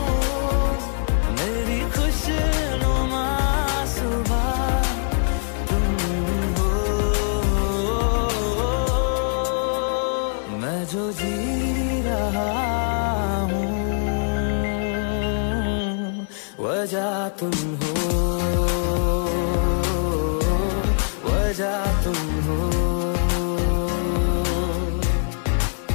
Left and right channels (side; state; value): right; silent; 64 dB below the other